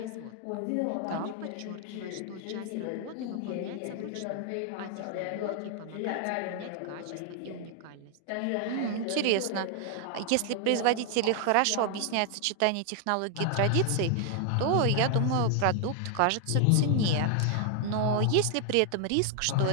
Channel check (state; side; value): different; both; correlation 0.00